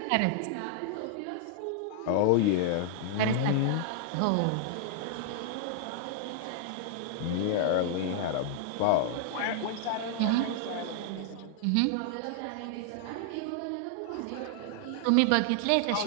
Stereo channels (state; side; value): different; both; correlation 0.00